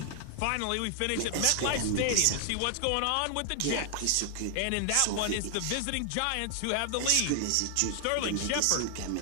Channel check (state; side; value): different; both; correlation 0.00